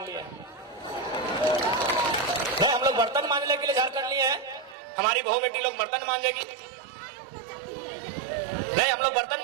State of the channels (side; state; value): left; drops out; at 4.8 s